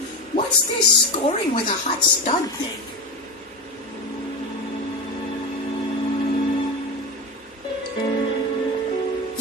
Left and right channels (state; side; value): normal; both; correlation 0.22